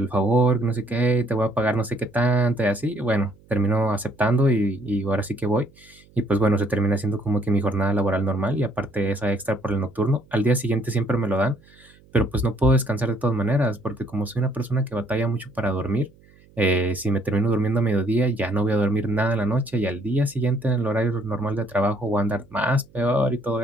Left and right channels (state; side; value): noise; right; hum, 28 dB below the sound